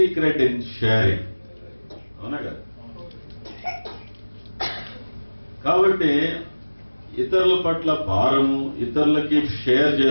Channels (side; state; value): both; inverted; correlation -1.00